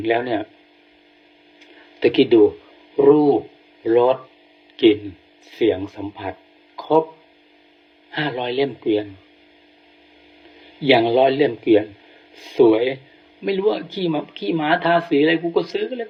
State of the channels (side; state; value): both; identical; correlation 1.00